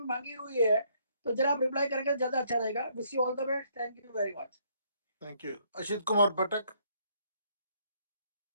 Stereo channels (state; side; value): inverted; both; correlation -0.68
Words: मांगी हुई है, तो जरा आप रिप्लाई करके ज्यादा अच्छा रहेगा। Wish you all the best. Thank you very much. Thank you. Ashit Kumar Patak.